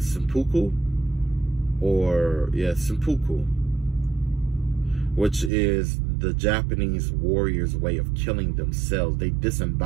seppuku. Or, yeah, seppuku, which is the Japanese warriors' way of killing themselves. They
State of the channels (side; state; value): left; drops out; at 5.5 s